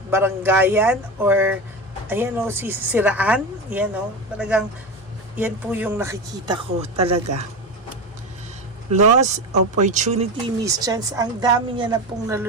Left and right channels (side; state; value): both; normal; correlation 0.22